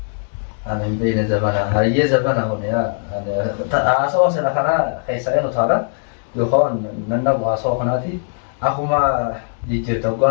أنا بين زمانها هي زمانها هنا أسوأ سنة خنا خيسائن وثارة يخون ننبغ أسوأ خناتي أخو ما يجي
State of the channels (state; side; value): silent; right; digital silence